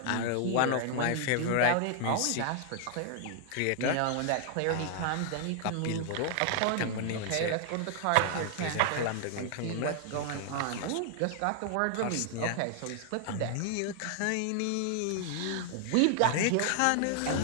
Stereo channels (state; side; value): different; both; correlation 0.00